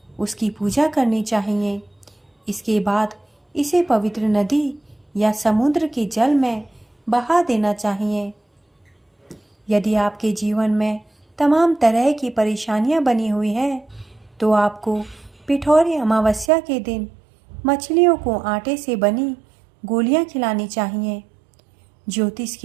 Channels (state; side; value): drops out; left; at 16.5 s